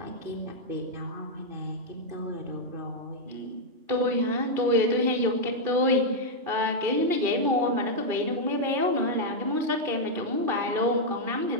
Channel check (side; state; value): left; late; 2.5 ms